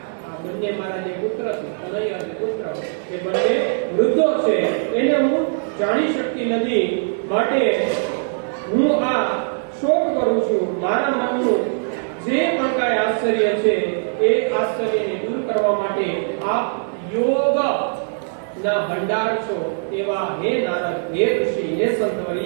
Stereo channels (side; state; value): left; silent; digital silence